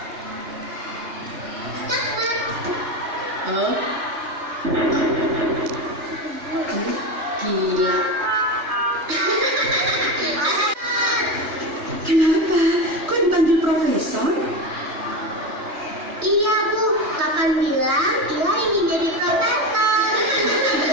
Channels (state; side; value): late; left; 3.2 ms